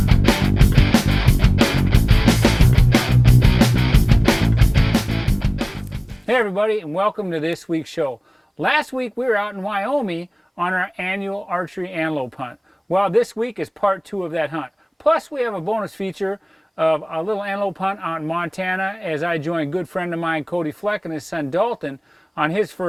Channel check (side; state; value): both; identical; correlation 1.00